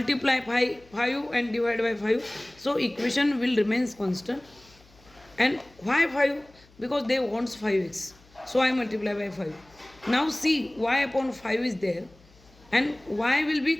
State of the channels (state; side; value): noise; left; hum, 28 dB below the sound